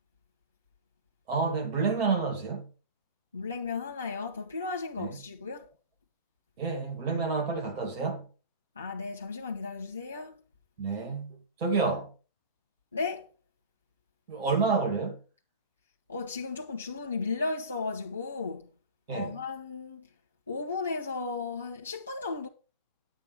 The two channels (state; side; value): inverted; both; correlation -0.34